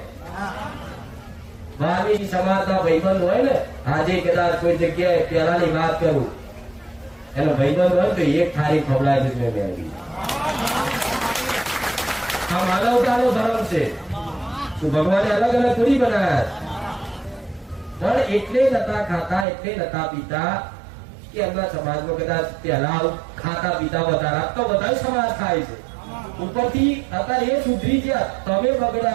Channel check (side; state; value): left; drops out; at 19.5 s